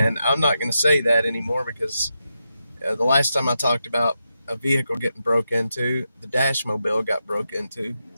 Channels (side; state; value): both; inverted; correlation -0.87